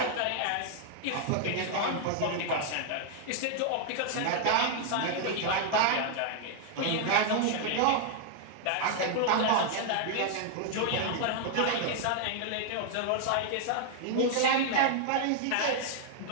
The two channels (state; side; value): different; both; correlation 0.00